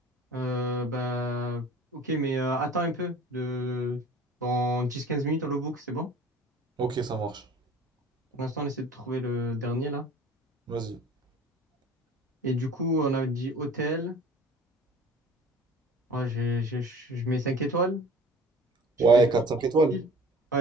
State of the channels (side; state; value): both; normal; correlation 0.45